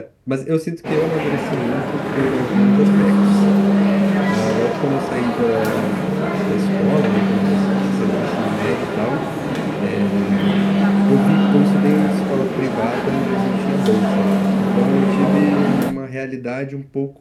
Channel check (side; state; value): both; identical; correlation 1.00